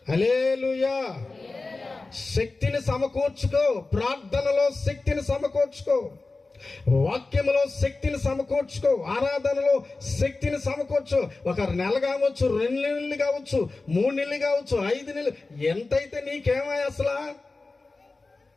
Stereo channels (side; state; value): right; quieter; 3.5 dB